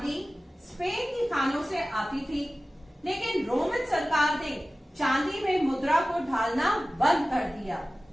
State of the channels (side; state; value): both; normal; correlation 0.96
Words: स्पेन की खानों से आती थी, लेकिन रोमन सरकार ने चांदी में मुद्रा को ढालना बंद कर दिया,